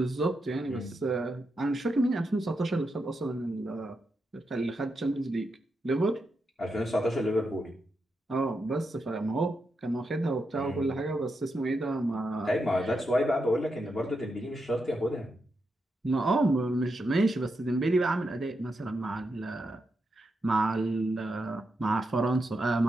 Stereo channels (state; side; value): normal; both; correlation 0.85